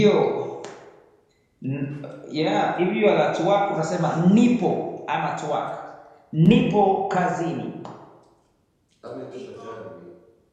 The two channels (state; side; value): identical; both; correlation 1.00